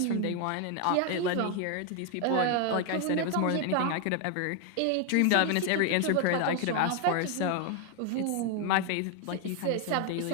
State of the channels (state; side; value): different; both; correlation 0.01